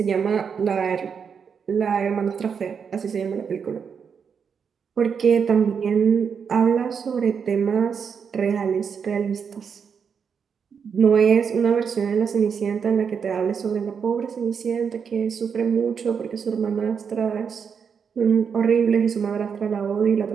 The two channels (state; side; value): quieter; left; 6.6 dB